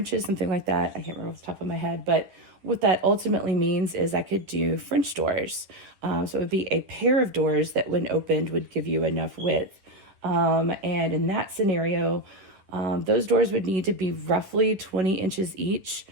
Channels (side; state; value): left; late; 10 ms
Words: something like that. I can't remember off the top of my head, but what that ultimately means is I could do French doors. So it would be a pair of doors that when opened would give you enough width. And in that scenario, those doors would need to be roughly 20 inches each,